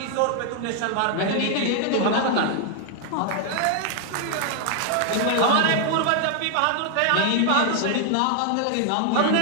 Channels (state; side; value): different; both; correlation 0.00